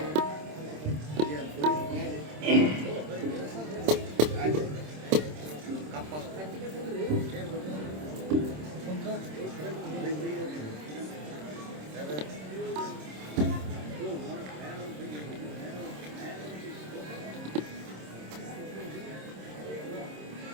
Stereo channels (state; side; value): late; left; 26 ms